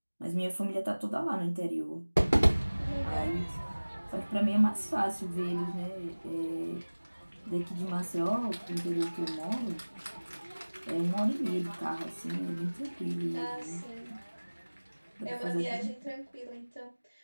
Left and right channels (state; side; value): inverted; both; correlation -1.00